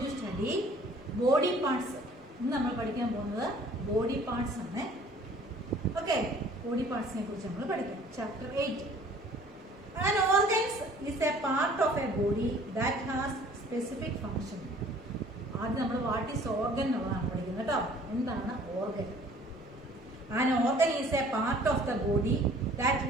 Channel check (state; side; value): normal; both; correlation 0.53